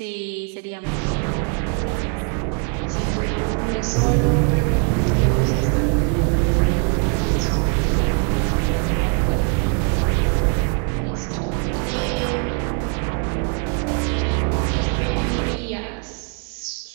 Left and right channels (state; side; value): quieter; left; 36.7 dB